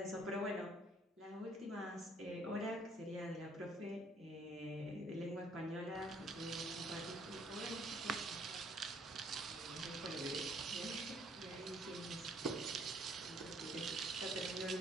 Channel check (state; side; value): normal; both; correlation 0.63